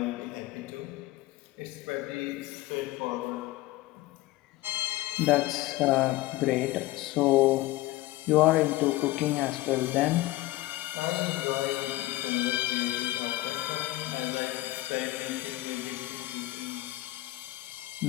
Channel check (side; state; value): right; quieter; 17.8 dB